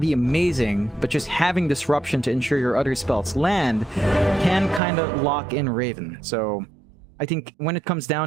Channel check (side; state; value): left; drops out; at 4.8 s